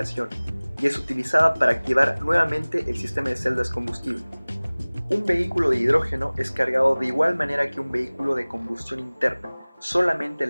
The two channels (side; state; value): both; inverted; correlation -1.00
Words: y es utilizada para activar nuevamente el sistema de celdas combustible. Un vehículo de hidrógeno es cargado de igual manera que un vehículo de combustión interna, solamente